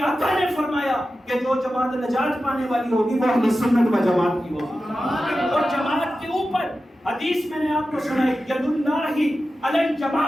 آقا نے فرمایا کہ جو جماعت نجات پانے والی ہوگی وہ اہل سنت و جماعت کی ہوگی، اور جماعت کے اوپر حدیث میں نے آپ کو سنائی ید اللہ علی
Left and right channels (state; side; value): normal; both; correlation 0.93